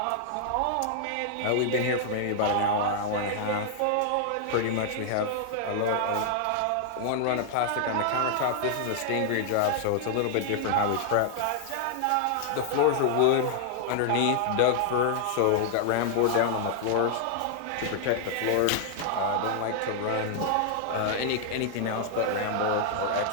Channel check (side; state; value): both; different; correlation -0.01